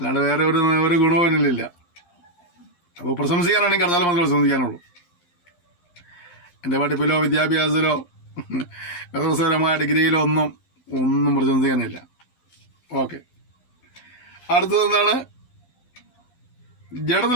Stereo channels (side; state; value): right; late; 11 ms